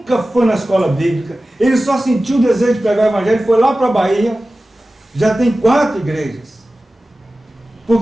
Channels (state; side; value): normal; both; correlation 0.96